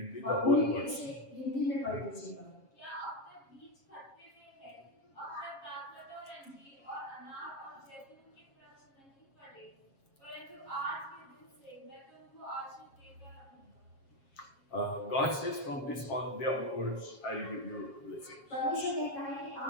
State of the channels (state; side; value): late; right; 7.4 ms